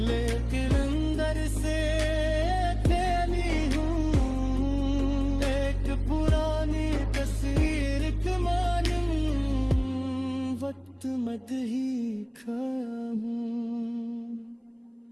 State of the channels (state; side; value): identical; both; correlation 1.00